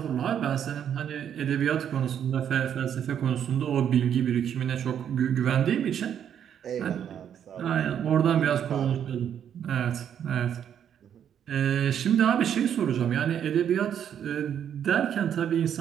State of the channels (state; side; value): quieter; left; 9.1 dB